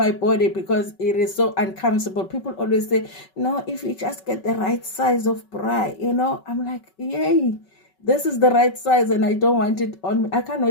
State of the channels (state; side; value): late; right; 5.3 ms